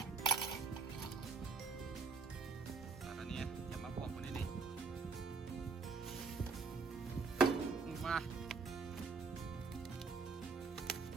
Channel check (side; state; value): left; quieter; 4.5 dB